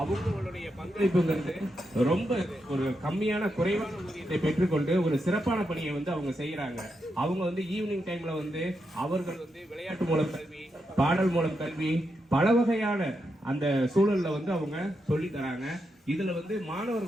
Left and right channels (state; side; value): normal; both; correlation 0.84